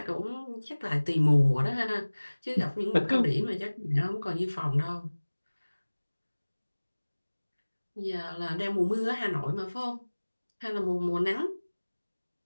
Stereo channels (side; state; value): both; inverted; correlation -1.00